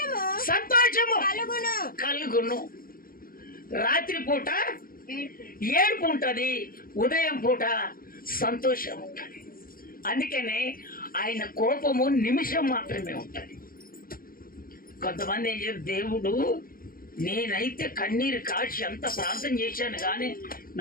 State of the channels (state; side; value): late; right; 0.42 ms